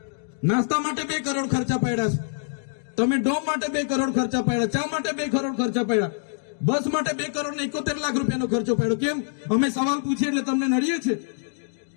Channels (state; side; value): silent; right; digital silence